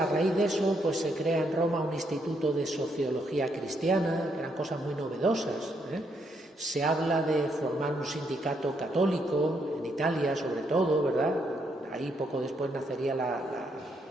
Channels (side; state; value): both; normal; correlation 0.76